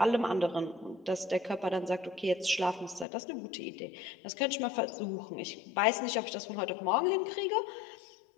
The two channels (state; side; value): drops out; right; at 3.1 s